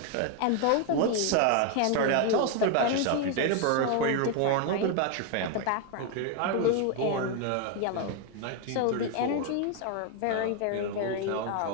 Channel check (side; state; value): both; different; correlation 0.01